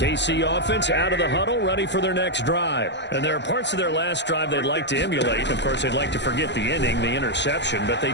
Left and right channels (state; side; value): late; right; 0.51 ms